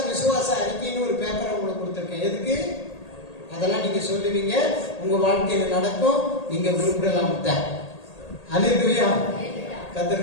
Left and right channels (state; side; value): late; right; 1.8 ms